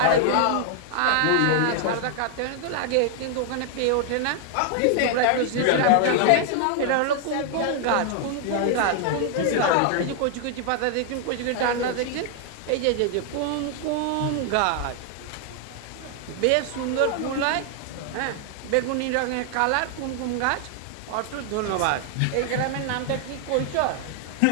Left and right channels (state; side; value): different; both; correlation 0.00